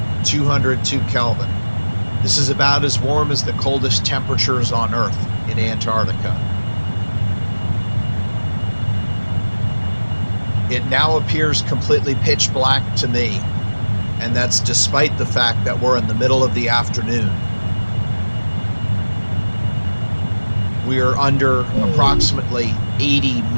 202 Kelvin. This is about as warm as the coldest temperatures on Earth in Antarctica. It now appears completely pitch black to me, and that's despite the fact that we're in the middle of the afternoon. We are under approximately 80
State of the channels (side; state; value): both; inverted; correlation -1.00